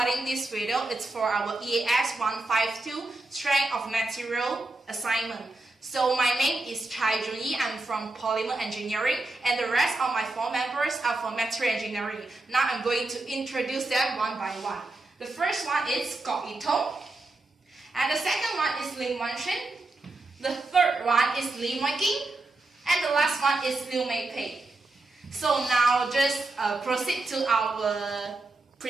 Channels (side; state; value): left; quieter; 3.0 dB